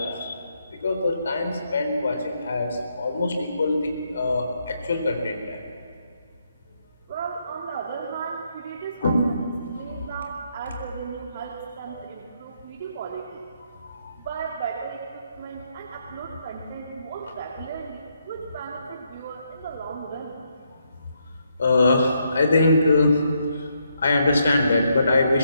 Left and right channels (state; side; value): inverted; both; correlation -0.77